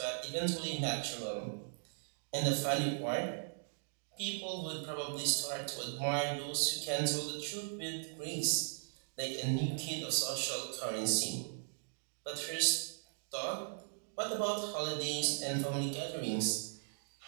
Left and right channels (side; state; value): left; silent; digital silence